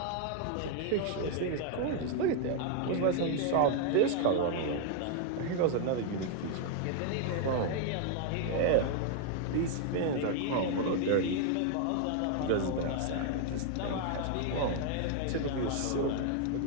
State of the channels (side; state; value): both; different; correlation 0.00